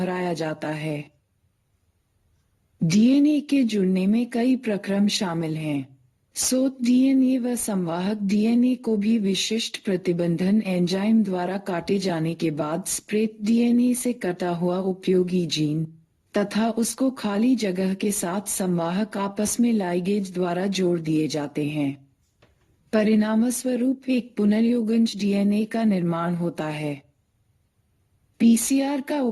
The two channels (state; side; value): identical; both; correlation 1.00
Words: जाता है। डीएनए के जुड़ने में कई प्रक्रम शामिल हैं। स्रोत डीएनए व संवाहक डीएनए को भी विशिष्ट प्रतिबंधन एंजाइम द्वारा काटे जाने के बाद स्प्रेड डीएनए से कटा हुआ उपयोगी जीन तथा उसको खाली जगह के साथ संवाहक आपस में लाइगेज द्वारा जोड़ दिए जाते हैं। परिणामस्वरूप एक पुनर्योगज डीएनए का निर्माण होता है। पीसीआर का